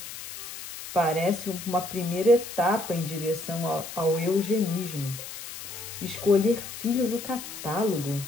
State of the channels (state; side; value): noise; left; hiss, 11 dB below the sound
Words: Parece uma primeira etapa em direção ao eugenismo. Escolher filho no catálogo.